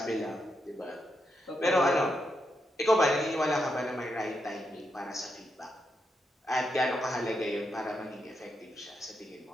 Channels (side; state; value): both; normal; correlation 0.83